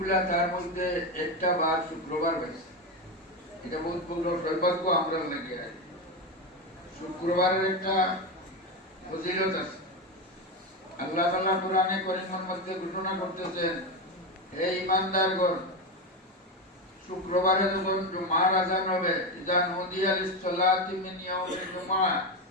তার মধ্যে একটা বার শুক্রবার হয়েছে। এটা বহুত বড় সৌভাগ্য আমরা লেগে আছে। শুক্রবারের একটা ফজিলত আছে। আল্লাহ তাআলা কোরআনে কারীমের মধ্যে ঘোষণা করতেছেন, হে ঈমানদারগণ, শুক্রবারে যখন জুমার আযান হবে, ইযা নুদিয়া লিস-সালাতি মিন ইয়াউমিল জুমআহ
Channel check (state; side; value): normal; both; correlation 0.14